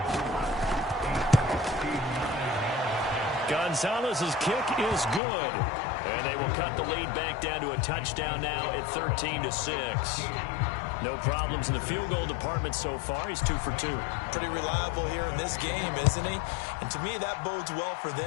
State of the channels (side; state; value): right; drops out; at 5.2 s